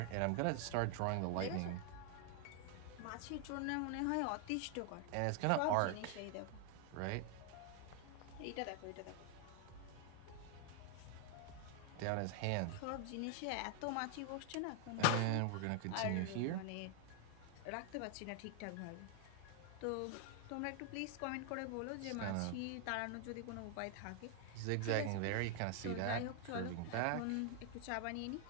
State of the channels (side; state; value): both; different; correlation 0.00